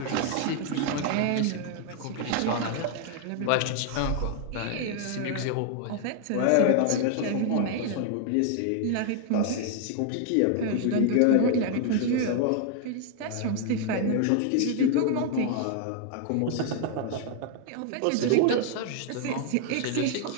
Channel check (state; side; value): different; both; correlation 0.00